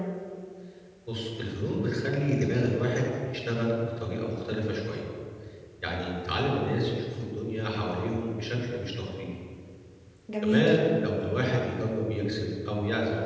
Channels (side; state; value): both; identical; correlation 1.00